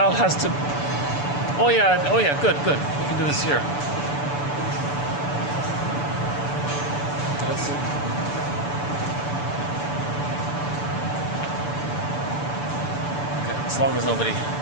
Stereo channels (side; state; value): right; late; 6.9 ms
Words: has to. Oh yeah, good. We can do this here. Let's see. Okay, as long as nobody.